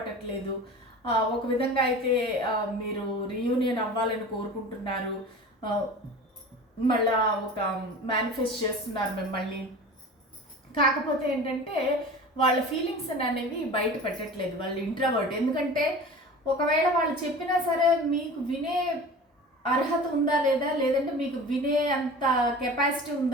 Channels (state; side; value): normal; both; correlation 0.37